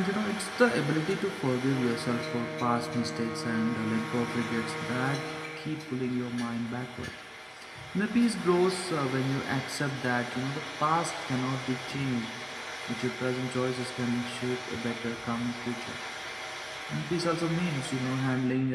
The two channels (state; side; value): identical; both; correlation 1.00